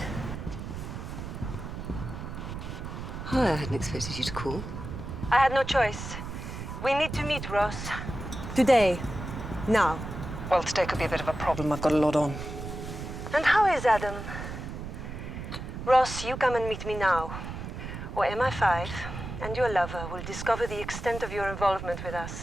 Hi, I hadn't expected you to call. I had no choice. We need to meet, Ross. Today. Now. Well, today could be a bit of a problem. I've got a lot on. And how is Adam? Ross, you come and meet me now. Or MI5 and your lover will discover the extent of your involvement with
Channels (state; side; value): noise; right; rumble, 8 dB below the sound